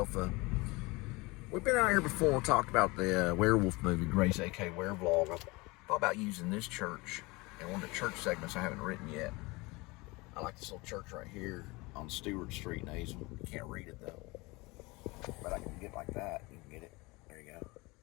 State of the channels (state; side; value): quieter; right; 24.1 dB